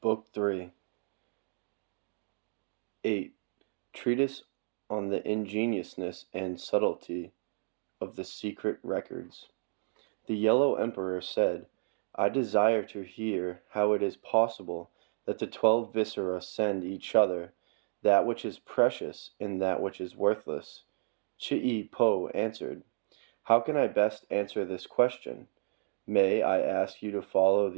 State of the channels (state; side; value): silent; left; digital silence